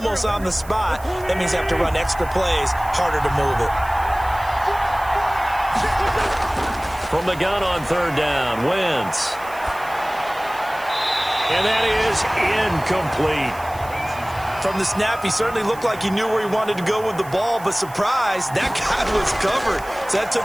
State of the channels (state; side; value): noise; right; hiss, 20 dB below the sound